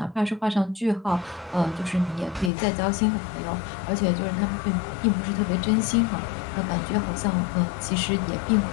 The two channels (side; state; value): right; drops out; at 2.5 s